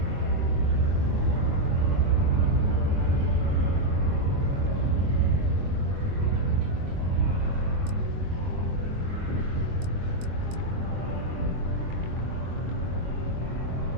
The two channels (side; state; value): left; late; 23 ms